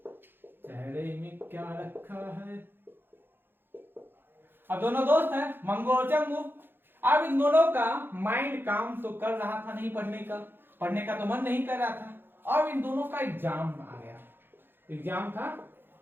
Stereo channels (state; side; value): late; left; 0.10 ms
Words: चेहरे में क्या रखा है। अब दोनों दोस्त हैं मंगू और चंगू। अब इन दोनों का माइंड काम तो कर रहा था नहीं, पढ़ने का तो मन नहीं कर रहा था। अब इन दोनों का एग्जाम आ गया, एग्जाम था